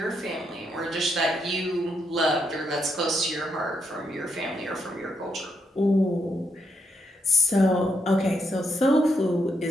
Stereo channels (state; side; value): normal; both; correlation 0.78